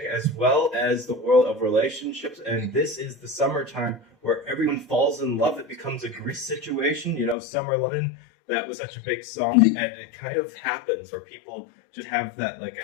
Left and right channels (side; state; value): right; drops out; at 7.4 s